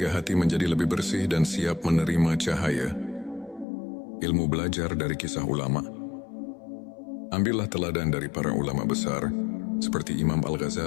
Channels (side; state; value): right; drops out; at 3.7 s